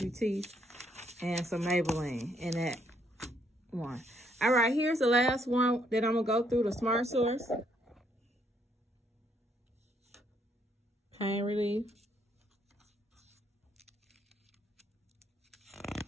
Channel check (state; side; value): normal; both; correlation 0.71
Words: and some Maybelline in that one. All right, here's the last one that I'm going to go through, the Smart Source. Pain relief.